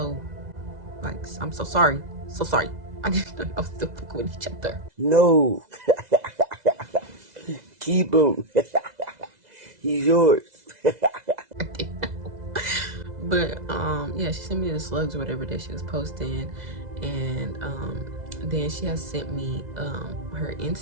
Like, I'm so sorry. So sorry. I didn't know I was still fucking with each other. No. Keep him. He's yours. But yeah, she sent me the slugs or whatever that she was posting, and then she has sent me her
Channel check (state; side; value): late; left; 2.0 ms